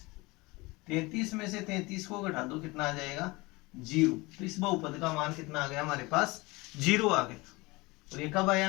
33 में से 33 को घटा दो, कितना आ जाएगा 0। तो इस बहुपद का मान कितना आ गया हमारे पास 0 आ गया। और ये कब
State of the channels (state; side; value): quieter; right; 23.4 dB